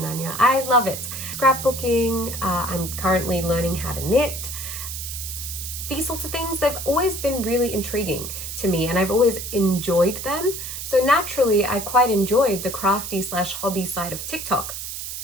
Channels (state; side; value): noise; right; hiss, 7 dB below the sound